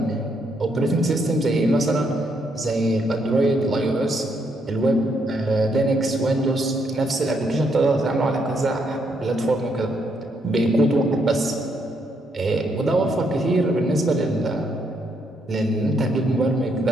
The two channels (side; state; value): both; normal; correlation 0.75